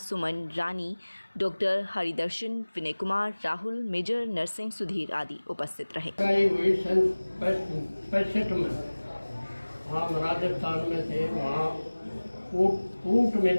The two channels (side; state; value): both; inverted; correlation -1.00